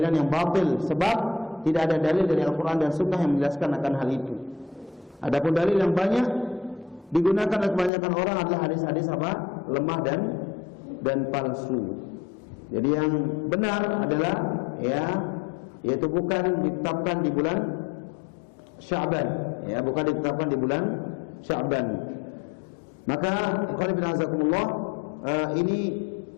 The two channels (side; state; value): right; drops out; at 7.9 s